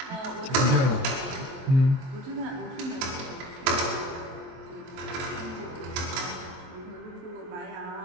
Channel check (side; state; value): left; late; 23 ms